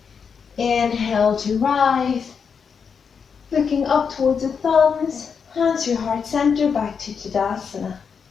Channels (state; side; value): quieter; right; 6.3 dB